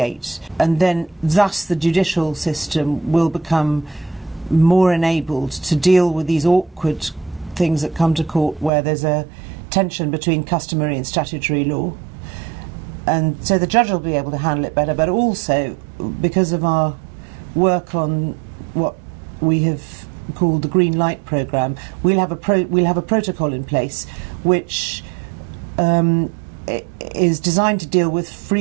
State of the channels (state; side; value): drops out; left; at 8.7 s